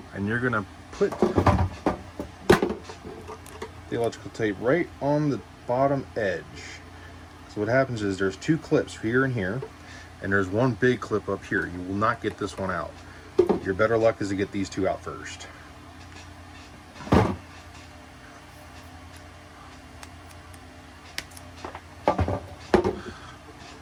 and you're going to put the electrical tape right on the bottom edge. So what happens is there's 2 clips here and here, and there's 1 big clip up here. You will not get this one out. Your better luck is to get these 2 out first.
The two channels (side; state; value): both; identical; correlation 1.00